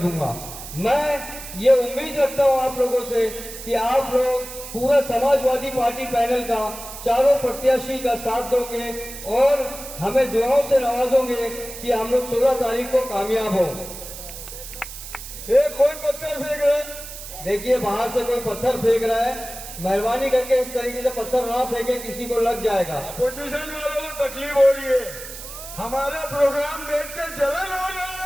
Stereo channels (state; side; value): noise; right; hiss, 12 dB below the sound